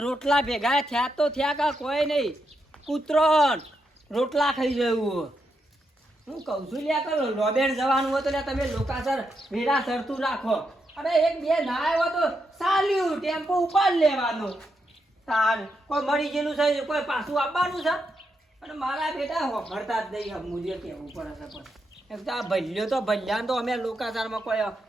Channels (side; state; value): both; normal; correlation 0.83